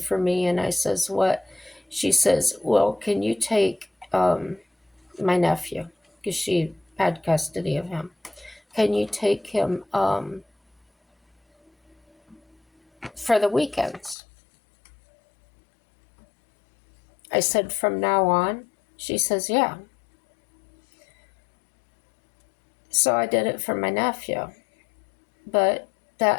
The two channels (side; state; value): right; drops out; at 14.2 s